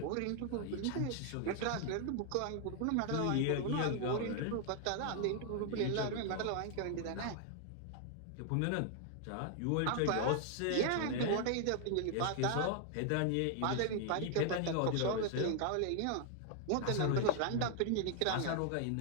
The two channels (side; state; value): both; different; correlation 0.00